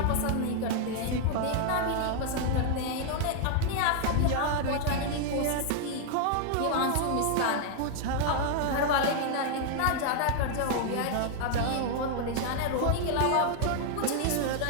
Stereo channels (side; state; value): both; different; correlation 0.00